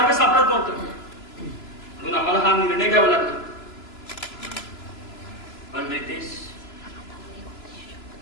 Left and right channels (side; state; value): right; late; 3.0 ms